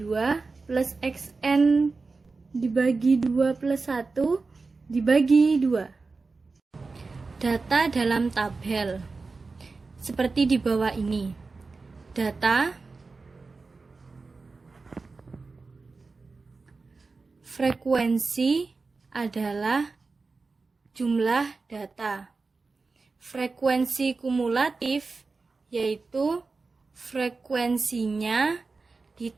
plus Xn dibagi 2 plus 1 dibagi 2. Data dalam tabel seperti di bawah ini. Data Frekuensi adalah jumlah data. Frekuensi kumulatif yaitu frekuensinya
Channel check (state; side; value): quieter; left; 4.0 dB